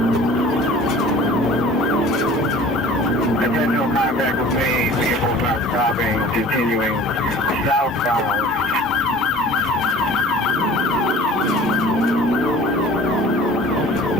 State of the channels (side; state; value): both; normal; correlation 0.45